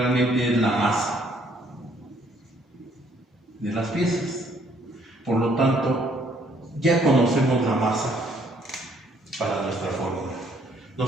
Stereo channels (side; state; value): both; normal; correlation 0.65